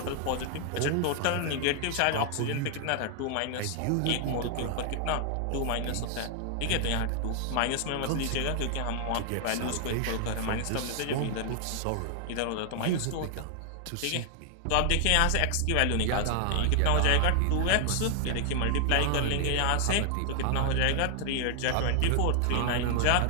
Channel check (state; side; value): different; both; correlation 0.00